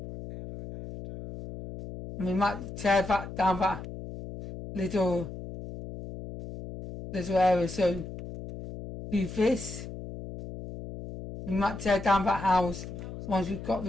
We might tear that down that little area, so do this. We might tear down that house once we've got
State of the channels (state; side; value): noise; left; hum, 10 dB below the sound